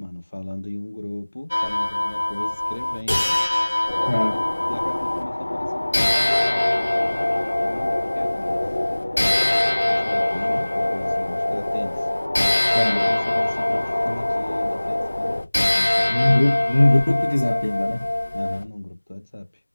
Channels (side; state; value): both; inverted; correlation -1.00